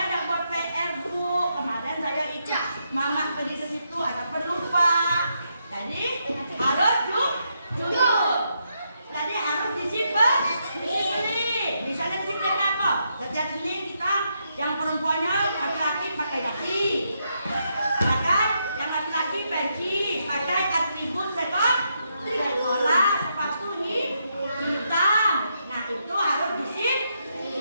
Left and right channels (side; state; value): both; inverted; correlation -0.80